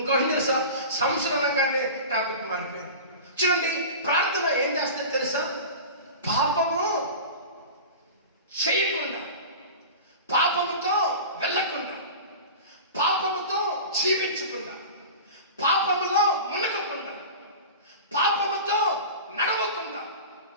తెలుసా? సంసోను అనగానే టాపిక్ మారిపోయింది. చూడండి, ప్రార్థన ఏం చేస్తుంది తెలుసా? పాపము చేయకుండా, పాపముతో వెళ్ళకుండా, పాపముతో జీవించకుండా, పాపములో మునగకుండా, పాపముతో నడవకుండా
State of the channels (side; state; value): both; inverted; correlation -0.33